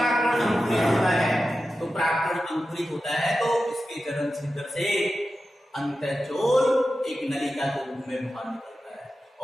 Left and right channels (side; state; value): both; normal; correlation 0.92